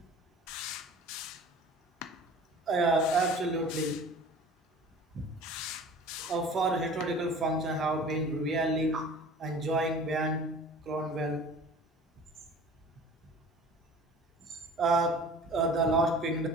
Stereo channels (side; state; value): both; normal; correlation 0.43